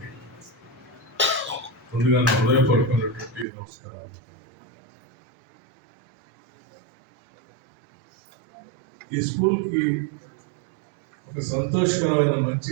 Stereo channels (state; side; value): drops out; left; at 3.5 s